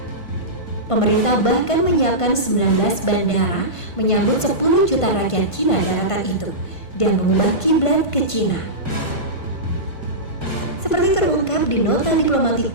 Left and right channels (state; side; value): late; right; 1.5 ms